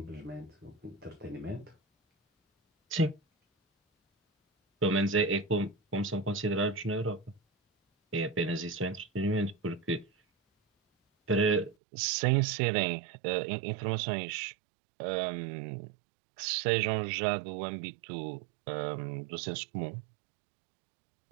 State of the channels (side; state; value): left; drops out; at 11.8 s